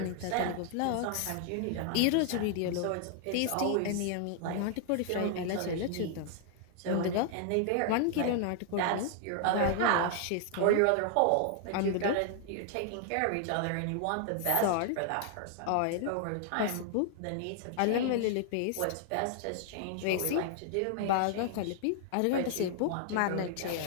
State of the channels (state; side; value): different; both; correlation 0.00